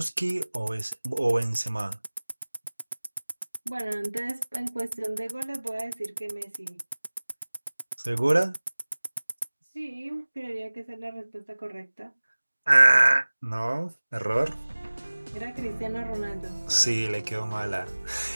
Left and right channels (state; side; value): inverted; both; correlation -1.00